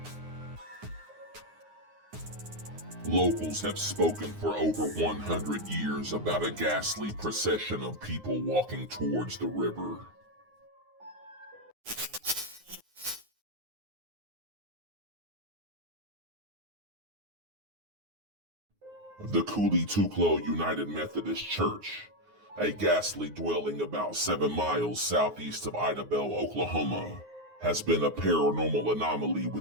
Locals have spoken for over 100 years about a ghastly procession of people walking towards the river. The KULLI TUKLO United Methodist Church, a ghastly dwelling about 7 miles southeast of Idabel, Oklahoma, has been a paranormal anomaly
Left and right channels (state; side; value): late; left; 9.6 ms